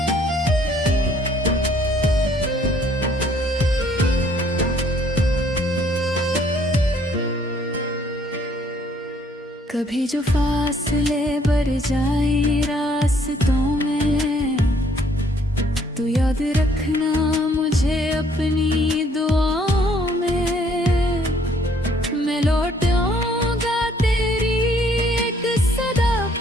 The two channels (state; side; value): normal; both; correlation 0.63